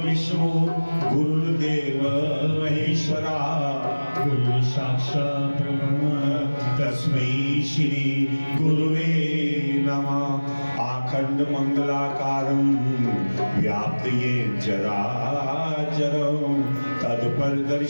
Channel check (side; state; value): both; inverted; correlation -1.00